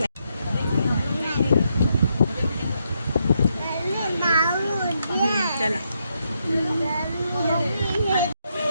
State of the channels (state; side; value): inverted; both; correlation -0.79